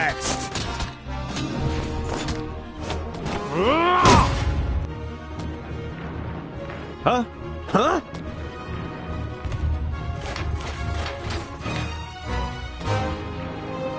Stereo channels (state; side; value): identical; both; correlation 1.00